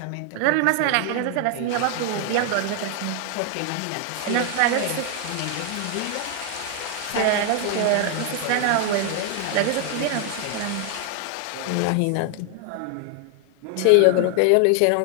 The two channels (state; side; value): different; both; correlation 0.00